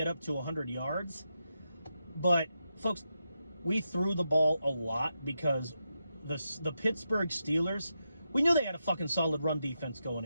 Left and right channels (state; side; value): inverted; both; correlation -0.86